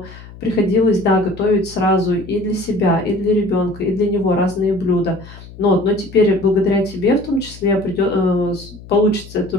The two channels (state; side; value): noise; left; hum, 18 dB below the sound